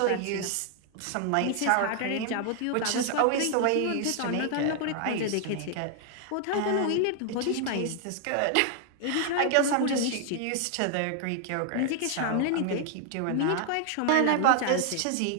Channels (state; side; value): different; both; correlation 0.00